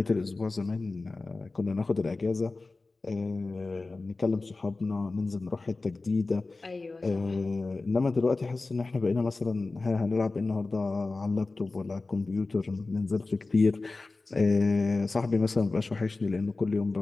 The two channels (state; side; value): quieter; right; 3.5 dB